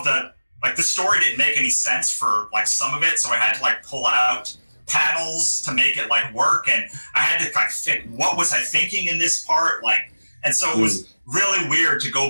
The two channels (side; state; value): both; inverted; correlation -1.00